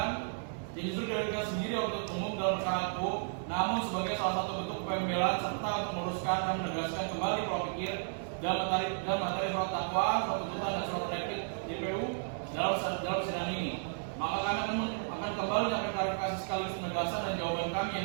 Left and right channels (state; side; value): silent; left; digital silence